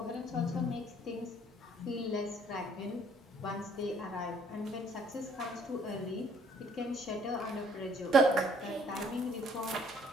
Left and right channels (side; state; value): both; normal; correlation 0.61